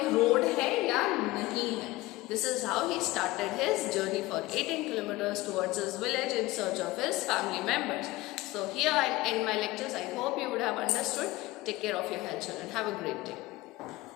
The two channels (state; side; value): quieter; right; 19.4 dB